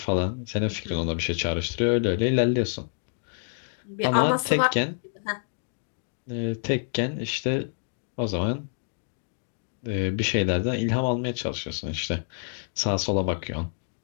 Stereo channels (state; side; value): silent; right; 59 dB below the other